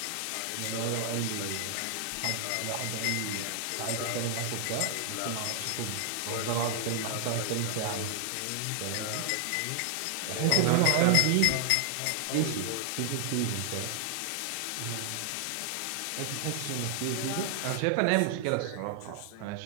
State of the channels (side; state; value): both; different; correlation 0.00